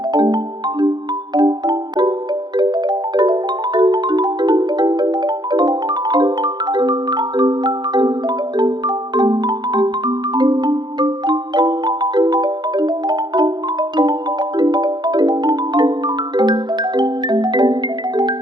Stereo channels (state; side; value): late; left; 0.21 ms